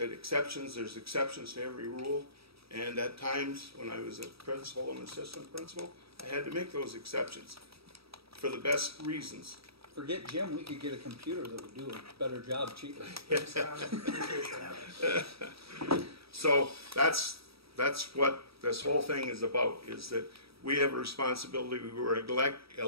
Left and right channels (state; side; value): late; left; 0.77 ms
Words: there's exceptions to every rule. And at times, when I was a principal and assistant principal, I had to make those exceptions for the best reasons. Forget Jim, we could get a computer that would do a better job cheaper. So that's what this whole thing is about, is that we have a responsibility. We were